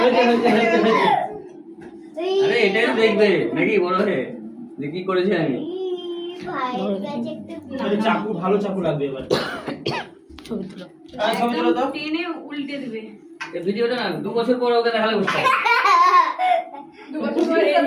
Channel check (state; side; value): identical; both; correlation 1.00